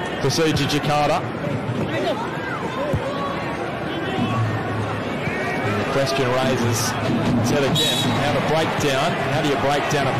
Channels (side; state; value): both; identical; correlation 1.00